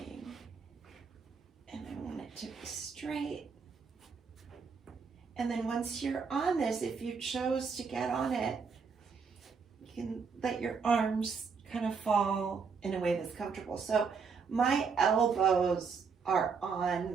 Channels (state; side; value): quieter; left; 5.5 dB